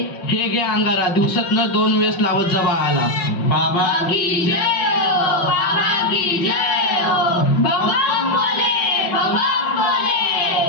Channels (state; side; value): late; right; 5.7 ms